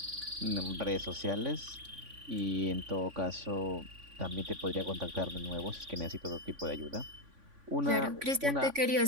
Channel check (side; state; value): left; late; 3.5 ms